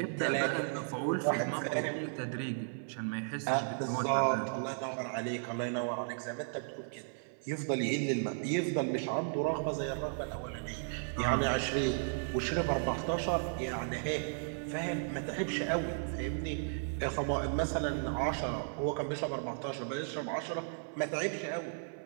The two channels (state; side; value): silent; left; 55 dB below the other